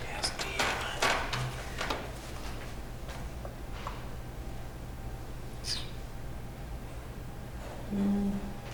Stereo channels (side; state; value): both; identical; correlation 1.00